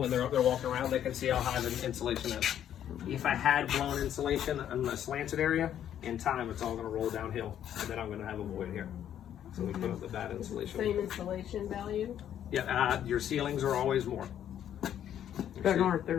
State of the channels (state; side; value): quieter; right; 10.3 dB